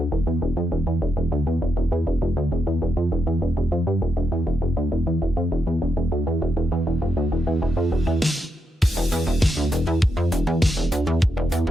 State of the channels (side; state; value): both; normal; correlation 0.84